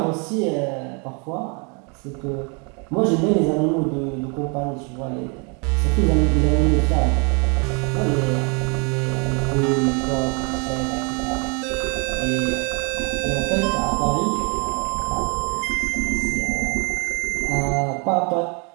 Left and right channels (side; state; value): left; quieter; 34.5 dB